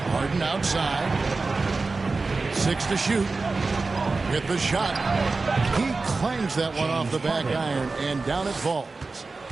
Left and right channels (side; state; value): left; quieter; 3.8 dB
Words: Harden outside. 6 to shoot. With the shot. He clangs that one off the back iron, and down it falls.